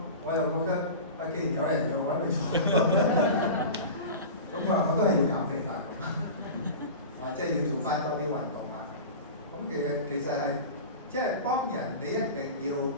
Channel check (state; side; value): inverted; both; correlation -0.32